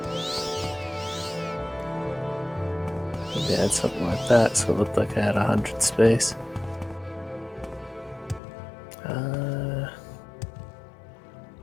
Maybe I had something like that, so it looked like I had 100 space. Yeah,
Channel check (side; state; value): right; drops out; at 8.4 s